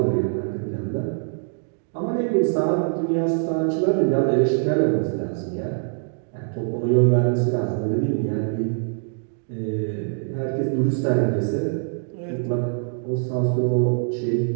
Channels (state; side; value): silent; left; 61 dB below the other